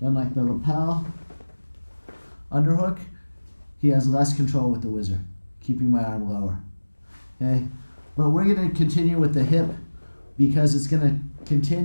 done like the lapel underhook, he has less control with the whizzer, keeping my arm lower. Okay? But we're going to continue with the hip because it's going to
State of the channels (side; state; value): both; inverted; correlation -1.00